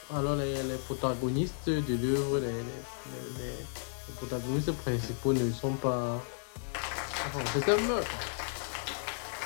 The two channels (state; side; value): silent; right; 55 dB below the other